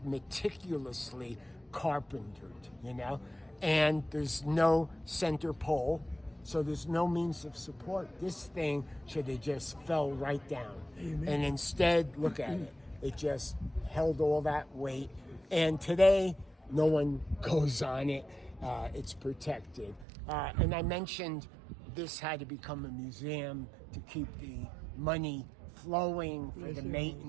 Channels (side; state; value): left; drops out; at 20.1 s